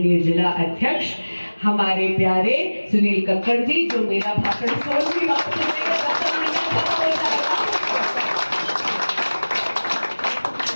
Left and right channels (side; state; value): both; inverted; correlation -1.00